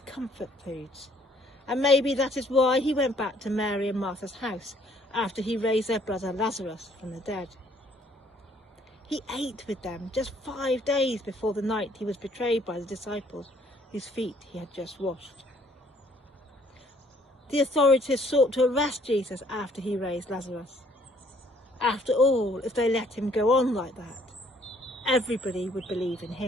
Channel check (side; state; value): both; normal; correlation 0.63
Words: comfort foods. And maybe that is why he went back to Mary and Martha's house after he raised their brother Lazarus from the dead. He ate with them just 5 days before the night he was betrayed by the disciples whose feet he had just washed. The authorities sought to arrest Jesus after he raised Lazarus. After all, if they let him go on like that, everybody would believe in